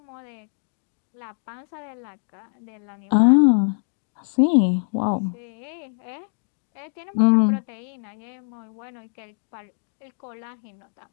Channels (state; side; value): silent; right; 58 dB below the other